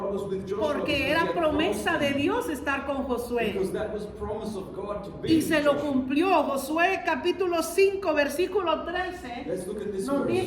was with Joshua Porque because he era had promesa promised de him. Dios estar con Josué. Because that was promise of God to be Y with se lo Joshua. cumplió. Josué capítulo 5, versículo 13. Let's look at this Nos verse.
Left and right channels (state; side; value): identical; both; correlation 1.00